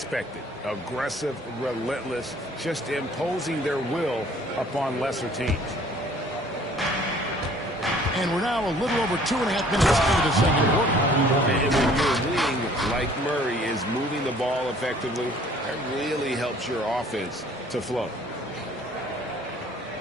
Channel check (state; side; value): normal; both; correlation 0.55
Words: Aggressive, relentless, just imposing their will upon lesser teams. And we're now a little over 2.5 minutes into the second quarter. And when your wing, like Murray, is moving the ball effectively, that really helps your offense to flow.